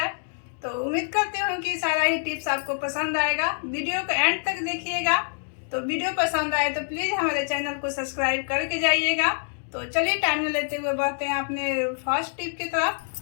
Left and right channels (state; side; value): silent; right; digital silence